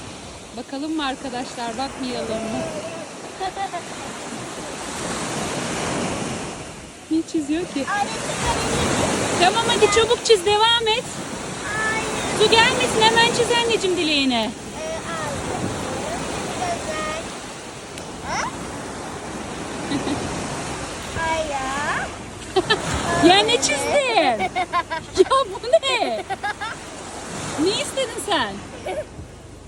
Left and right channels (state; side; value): identical; both; correlation 1.00